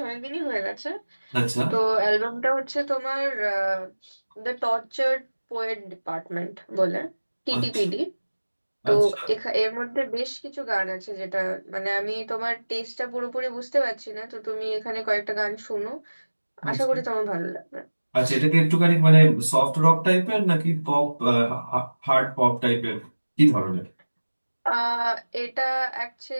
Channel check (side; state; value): both; inverted; correlation -1.00